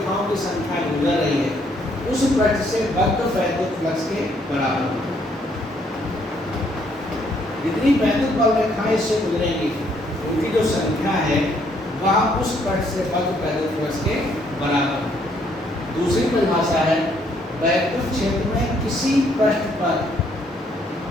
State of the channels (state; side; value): normal; both; correlation 0.68